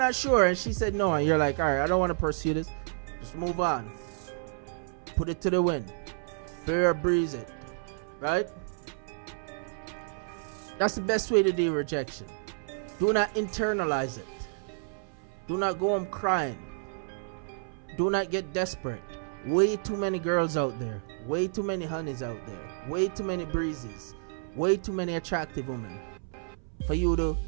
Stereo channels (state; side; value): silent; left; 58 dB below the other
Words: sure and she said no and you're like, all right, I don't want to pursue this, just move on. Put it to the wind. Bear or breeze it, right? That's the best way to deal with rejection. Do not internalize it. Do not go home crying. Do not get desperate. Way too many girls out there. Way too many honeys out there. Way too many breezes. Way too many attractive women for you to